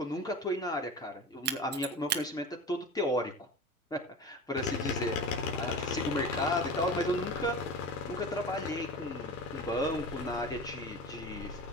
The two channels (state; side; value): normal; both; correlation 0.32